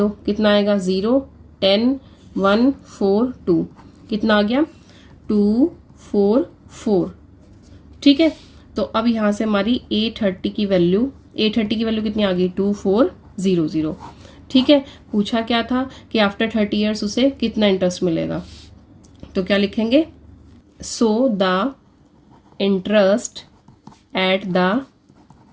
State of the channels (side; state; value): both; identical; correlation 1.00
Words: कितना आएगा 0 10 1 4 2, कितना आ गया 244। ठीक है, तो अब यहाँ से हमारी A30 की वैल्यू कितनी आ गई 2400। ठीक है, पूछा क्या था कि आफ्टर 30 ईयर्स उसे कितना इंटरेस्ट मिलेगा, तो क्या लिखेंगे, so the interest at the